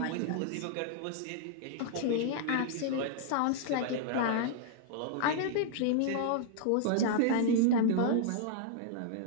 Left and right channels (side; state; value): both; different; correlation -0.01